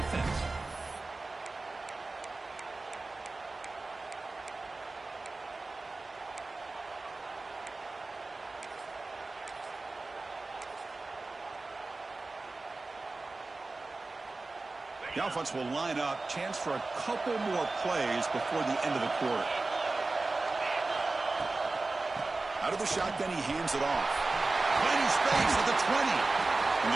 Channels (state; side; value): quieter; left; 3.4 dB